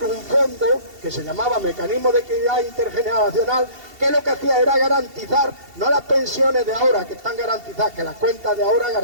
un fondo que se llamaba Mecanismo de Equidad Intergeneracional, que lo que hacía era garantizar, no las pensiones de ahora que están garantizadas, que las cuentas de ahora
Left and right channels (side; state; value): left; late; 2.7 ms